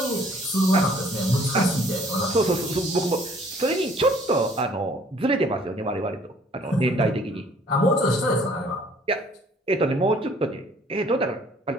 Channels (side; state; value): both; normal; correlation 0.58